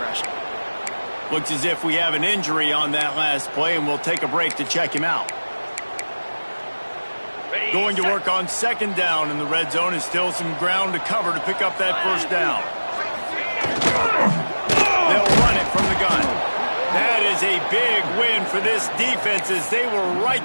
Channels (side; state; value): both; inverted; correlation -1.00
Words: Looks as if we have an injury on that last play, and we'll take a break to check him out. Going to work on second down in the red zone, is still some ground to cover to pick up that first down. They'll run it from the gun. That is a big win for this defense as they were right